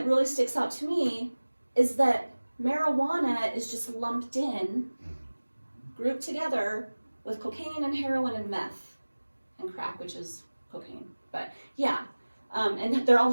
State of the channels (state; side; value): inverted; both; correlation -1.00